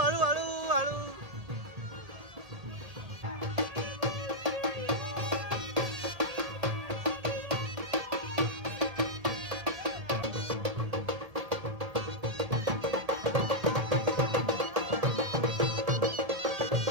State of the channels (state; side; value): late; left; 1.8 ms